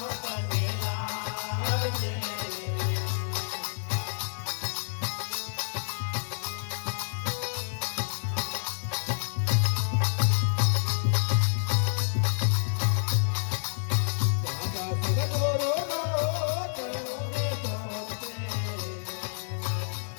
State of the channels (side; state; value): right; silent; digital silence